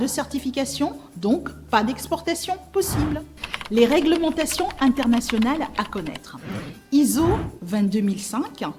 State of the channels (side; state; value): both; identical; correlation 1.00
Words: certification, donc pas d'exportation possible. Les réglementations internationales à connaître. ISO 22005,